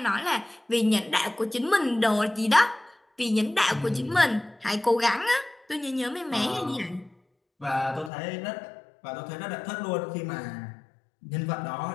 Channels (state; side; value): drops out; right; at 8.1 s